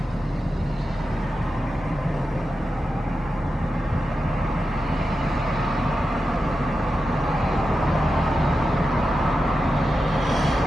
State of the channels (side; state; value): both; normal; correlation 0.90